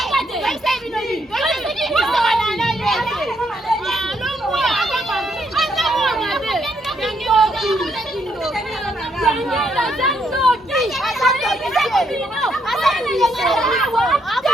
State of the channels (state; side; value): normal; both; correlation 0.74